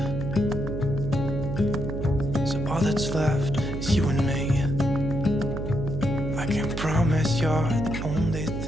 so all that's left is you and me. I can promise you're the only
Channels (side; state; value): right; noise; hum, 4 dB below the sound